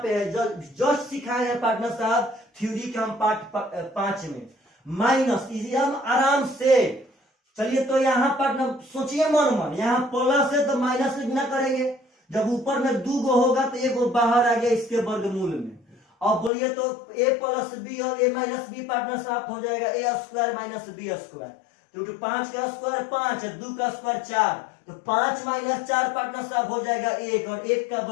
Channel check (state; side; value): drops out; right; at 16.5 s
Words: पे है, जस्ट सिखाए हैं पार्टनर साहब थ्योरी के हम पार्ट 5 में। माइनस इसी हम आराम से चलिए। तो यहाँ पार्टनर सोचिए मन, यहाँ प्लस है तो माइनस से गुना करेंगे। जब ऊपर में 2 गो होगा तो 1 गो बाहर आ गया इसके वर्गमूल में। अब बोलिए तो a प्लस बी और a माइनस बी पार्टनर साथ हो जाएगा a square minus b square. तो 5 का स्क्वायर 5 है, 2 का स्क्वायर 4, तो 5 माइनस 4 पार्टनर साहब हो जाएगा 1, और 1 का